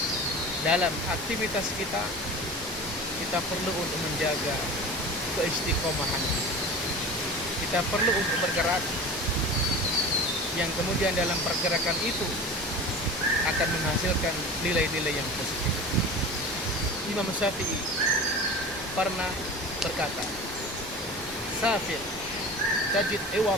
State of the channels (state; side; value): normal; both; correlation 0.34